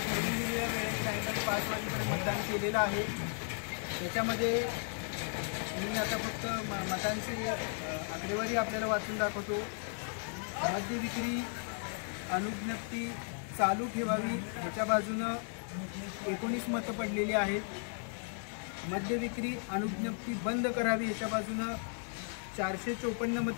मतदान केलेलं आहे। त्याच्यामध्ये मी आता फक्त मतांची आकडेवारी आपल्याला वाचून दाखवतो। मद्य विक्री अनुज्ञप्ती चालू ठेवावी ह्याच्या बाजूनं 19 मतं पडलेली आहेत। मद्य विक्री अनुज्ञप्ती बंद करावी ह्याच्या बाजूनं 454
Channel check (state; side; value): silent; right; 54 dB below the other